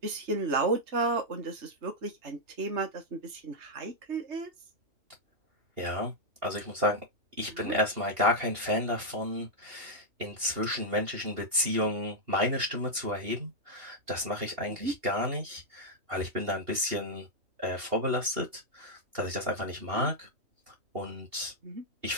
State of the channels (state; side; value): late; left; 2.8 ms